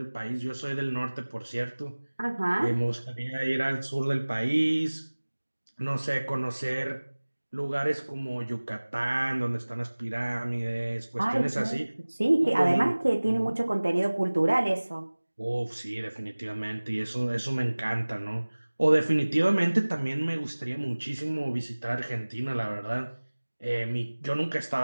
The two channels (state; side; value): inverted; both; correlation -1.00